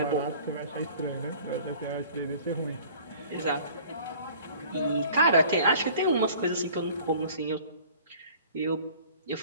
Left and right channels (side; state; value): both; inverted; correlation -0.49